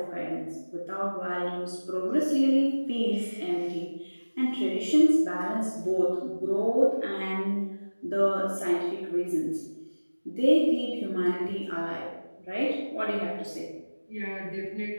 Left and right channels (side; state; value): both; inverted; correlation -1.00